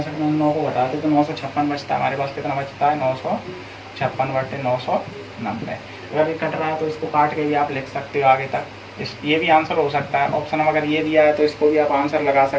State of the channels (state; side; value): identical; both; correlation 1.00